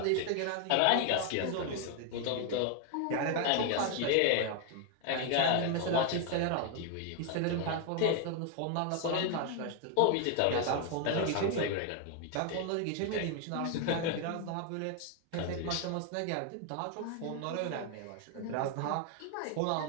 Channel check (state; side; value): different; both; correlation 0.01